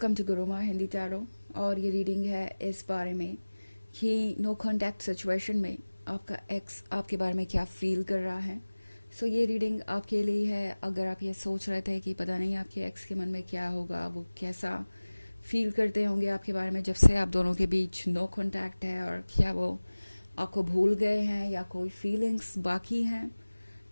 to Guruma Hindi tarot. और ये reading है इस बारे में कि नो कॉन्टैक्ट सिचुएशन में आपका एक्स आपके बारे में क्या फील कर रहा है। सो ये रीडिंग आपके लिए है। अगर आप ये सोच रहे थे कि पता नहीं आपके एक्स के मन में क्या होगा, वो कैसा फील करते होंगे आपके बारे में जब से आप दोनों के बीच नो कॉन्टैक्ट है, और क्या वो आपको भूल गए हैं या कोई फीलिंग्स बाकी हैं,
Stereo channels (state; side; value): inverted; both; correlation -1.00